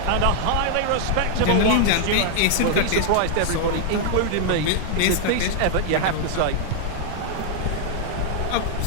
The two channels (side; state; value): both; different; correlation 0.00